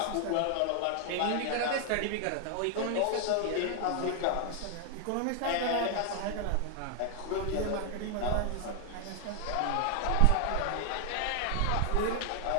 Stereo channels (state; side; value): different; both; correlation 0.00